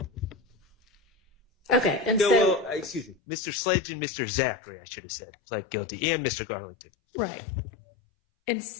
Okay, and no, so well, Mr. Sledge and Mr. Zachary, I should have said, pled guilty, and Mr. Garlington. right,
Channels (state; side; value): drops out; right; at 3.2 s